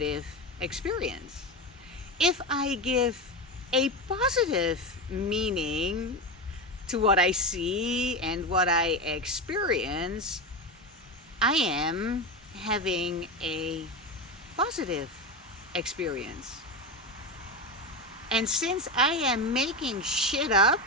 experience. If I give a positive meaning to what I see and what I experience, I am having a positive experience. And since I am making shit up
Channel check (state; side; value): normal; both; correlation 0.18